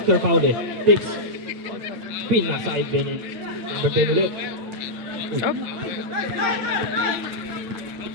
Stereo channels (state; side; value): late; left; 9.2 ms